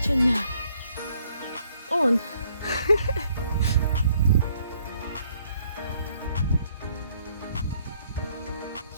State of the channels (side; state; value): both; inverted; correlation -0.67